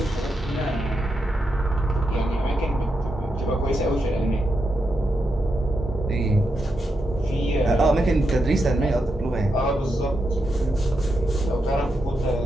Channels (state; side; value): normal; both; correlation 0.85